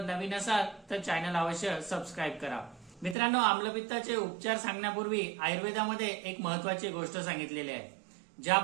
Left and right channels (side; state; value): left; drops out; at 3.2 s